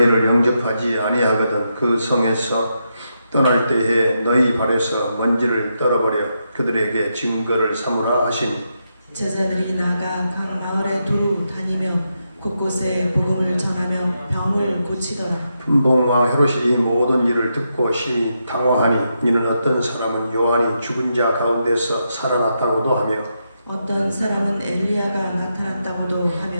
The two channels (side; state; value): both; inverted; correlation -0.83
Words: 영접하지 아니하거든 그 성에서 떠날 때에 너희 발에서 먼지를 떨어버려 그들에게 증거를 삼으라 하시니 제자들이 나가 각 마을에 두루 다니며 곳곳에 복음을 전하며 병을 고치더라. 분봉왕 헤롯이 이 모든 일을 듣고 심히 당황하니 이는 어떤 사람은 요한이 죽은 자 가운데서 살아났다고도 하며 어떤 사람은 엘리야가 나타났다고도